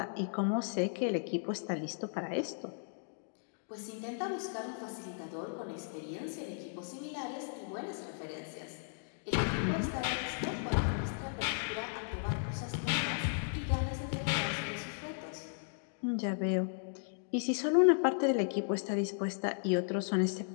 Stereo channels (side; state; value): right; silent; digital silence